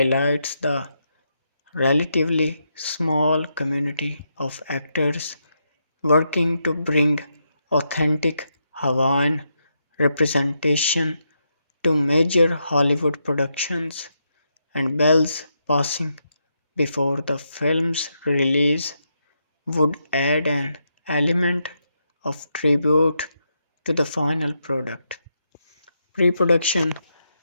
the relatively small community of actors working to bring authentic Hawaiian representation to major Hollywood productions, and Bell's passing before the film's release would add an element of tribute to the final product. Pre production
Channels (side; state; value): both; inverted; correlation -0.82